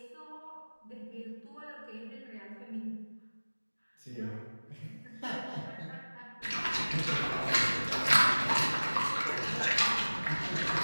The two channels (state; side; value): inverted; both; correlation -1.00